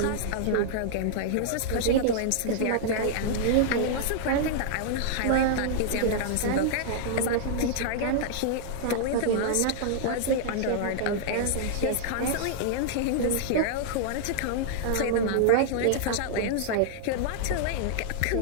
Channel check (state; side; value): different; both; correlation -0.01